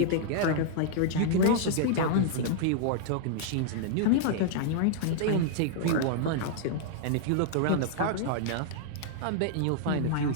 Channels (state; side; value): different; both; correlation -0.01